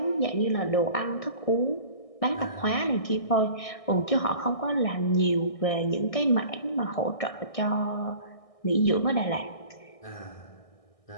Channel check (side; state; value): right; late; 1.6 ms